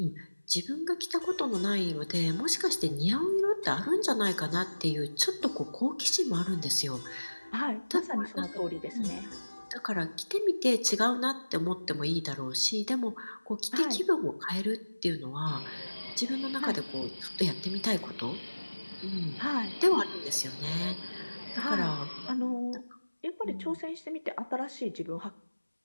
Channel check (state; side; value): inverted; both; correlation -1.00